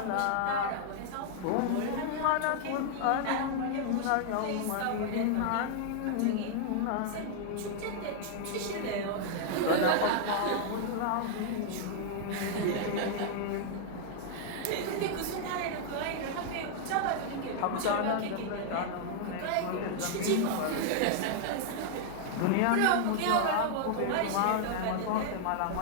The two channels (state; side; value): different; both; correlation -0.01